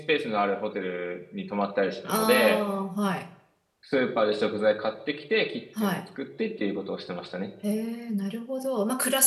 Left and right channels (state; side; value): identical; both; correlation 1.00